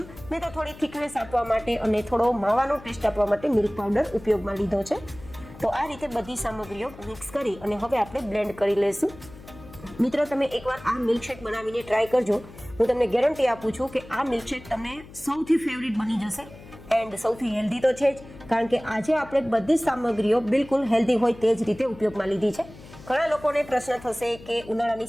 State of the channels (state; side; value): noise; left; hum, 19 dB below the sound